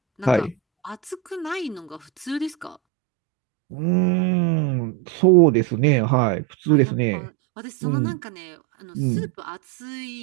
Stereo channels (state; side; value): drops out; left; at 2.8 s